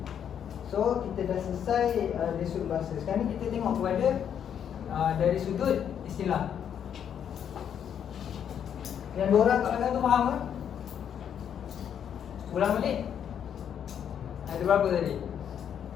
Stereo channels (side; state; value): right; quieter; 8.7 dB